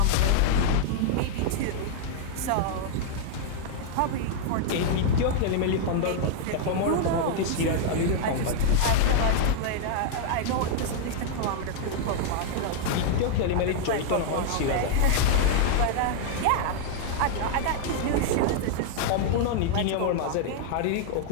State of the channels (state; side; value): different; both; correlation -0.01